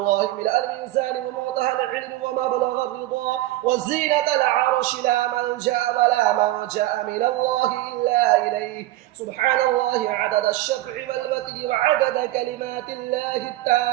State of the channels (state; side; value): quieter; left; 16.2 dB